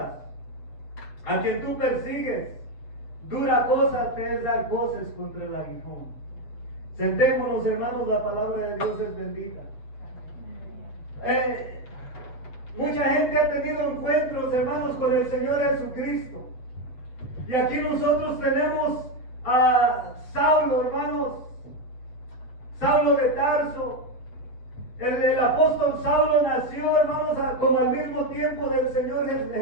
a quien tú persigues. Dura cosa te es dar voces contra el aguijón. Sentémonos, hermanos, la palabra de Dios es bendita. Mucha gente ha tenido encuentros, hermanos, con el Señor Jesucristo. Y aquí nosotros tenemos a Saulo, hermanos, Saulo de Tarso. El apóstol Saulo nació, hermanos, como al mismo tiempo del Señor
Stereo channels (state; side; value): late; right; 7.9 ms